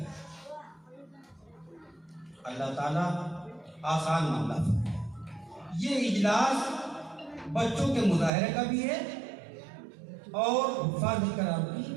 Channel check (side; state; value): left; drops out; at 8.3 s